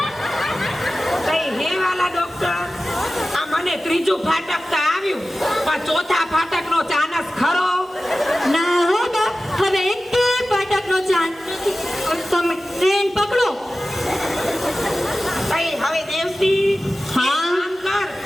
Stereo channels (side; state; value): both; normal; correlation 0.96